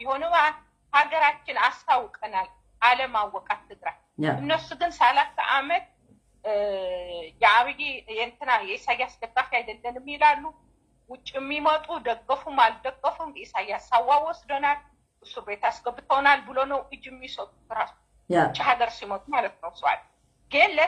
ሀገራችን አስታውቀናል። አለማወቃት ትግራይ። እነሱ ግን 30 ዓመት የአብይ የእንትና የኢሳያስ ደጋፊ አይደለንም ይላሉ። ውጭ የሚመጡ ደገፉም አልደገፉም ኢሳያስ ሳዋ ወስደናል፣ እስር ቤት አስገብተውናል ብሎ ነው እጅ የሚሰጡት ራሱ ውጭ ሀገር ሲመጡ ማለት ነው። ሰዋል ግን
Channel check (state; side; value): identical; both; correlation 1.00